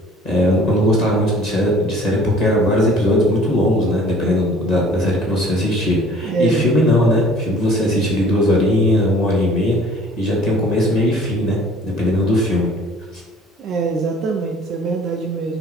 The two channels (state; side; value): normal; both; correlation 0.52